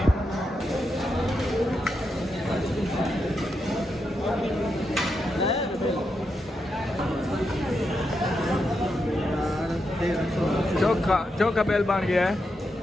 चोखा बेल बन गया है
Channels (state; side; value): normal; both; correlation 0.84